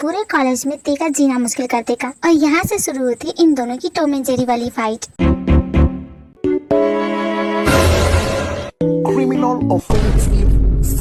कॉलेज में ते का जीना मुश्किल कर देगा। और यहाँ से शुरू होती है इन दोनों की टॉम एंड जेरी वाली फाइट।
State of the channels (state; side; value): identical; both; correlation 1.00